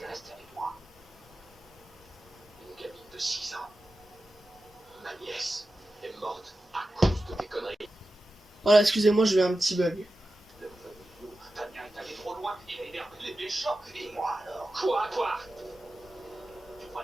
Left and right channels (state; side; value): normal; both; correlation 0.93